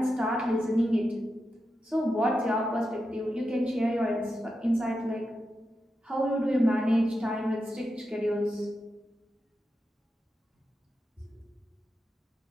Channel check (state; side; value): normal; both; correlation 0.88